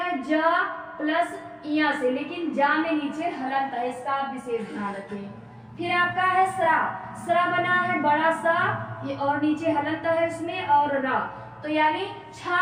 जा प्लस इया से, लेकिन जा में नीचे हलंत है, इसका आप विशेष ध्यान रखें। फिर आपका है स्रा, स्रा बना है बड़ा सा ये और नीचे हलंत है इसमें और रा, तो यानी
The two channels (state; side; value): identical; both; correlation 1.00